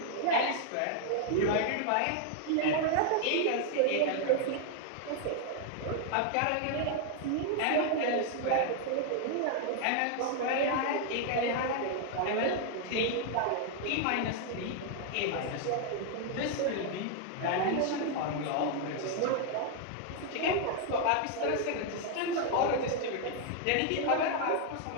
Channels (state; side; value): different; both; correlation 0.00